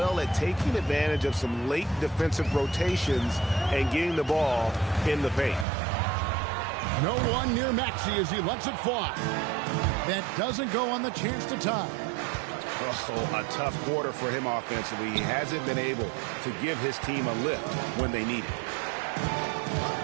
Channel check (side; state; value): left; drops out; at 5.7 s